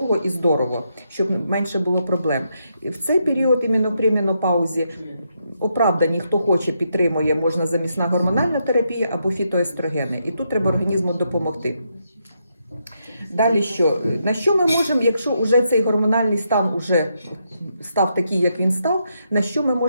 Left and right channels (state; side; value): inverted; both; correlation -0.80